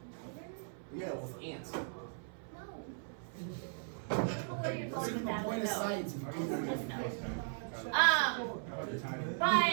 Lighter? Yeah, with ants. No. I don't know where you're going with that, but no. science. Just no.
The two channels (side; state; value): left; silent; 53 dB below the other